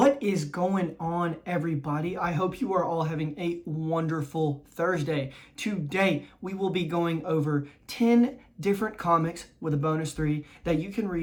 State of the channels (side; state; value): both; identical; correlation 1.00